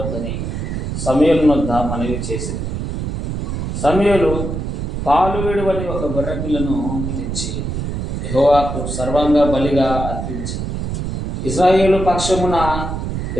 సమూయేలు వద్ద మనవి చేసింది. సమూయేలు పాలు విడువని ఒక గొర్రెపిల్లను తెచ్చి యెహోవాకు సర్వాంగ బలిగా అర్పించి ఇశ్రాయేలు పక్షమున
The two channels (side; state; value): right; noise; rumble, 3 dB below the sound